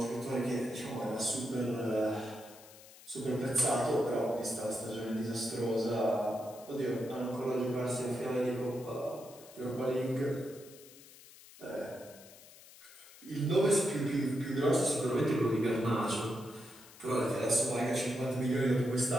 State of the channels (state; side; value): noise; left; hiss, 20 dB below the sound